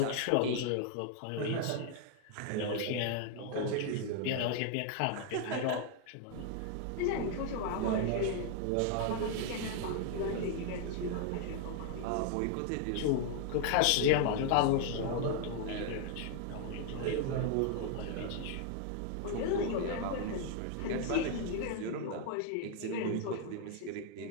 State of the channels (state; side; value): different; both; correlation 0.00